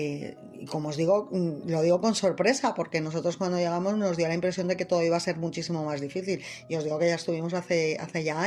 como os digo, lo digo con sorpresa porque nosotros cuando llegamos nos dio la impresión de que todo iba a ser muchísimo más difícil y os digo que ya estuvimos hace ya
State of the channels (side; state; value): both; identical; correlation 1.00